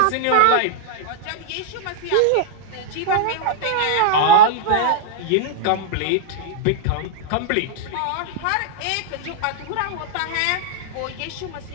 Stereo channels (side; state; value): both; different; correlation -0.01